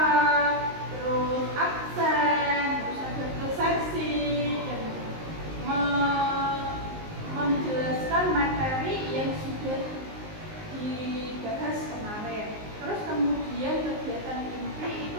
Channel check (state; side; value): late; left; 19 ms